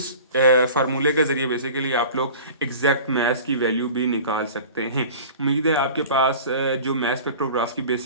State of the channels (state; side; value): inverted; both; correlation -0.41